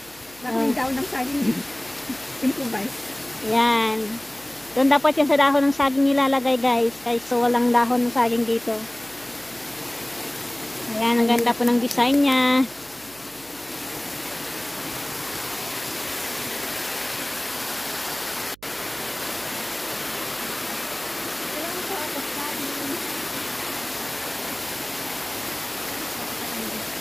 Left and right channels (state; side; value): noise; right; hum, 25 dB below the sound